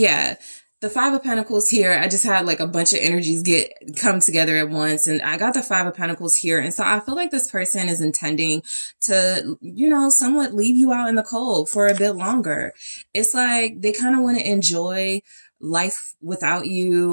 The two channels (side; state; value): both; inverted; correlation -1.00